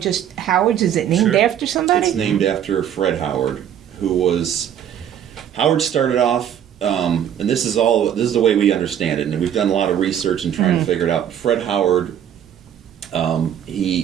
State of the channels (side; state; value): left; quieter; 9.7 dB